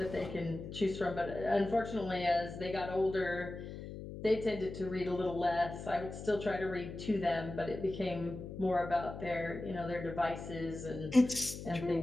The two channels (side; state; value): left; noise; hum, 10 dB below the sound